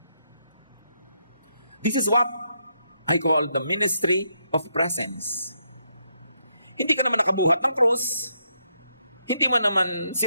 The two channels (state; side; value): inverted; both; correlation -0.78